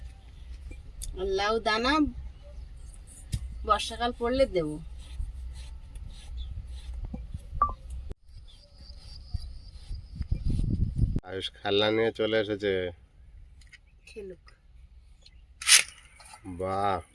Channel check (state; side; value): identical; both; correlation 1.00